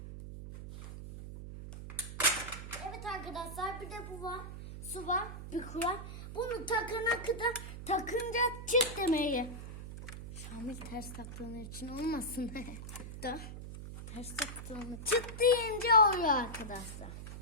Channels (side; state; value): right; noise; hum, 10 dB below the sound